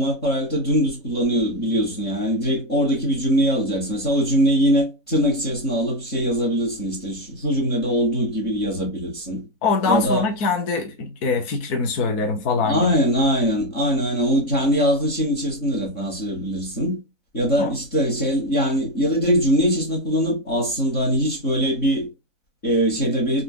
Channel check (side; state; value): right; late; 4.0 ms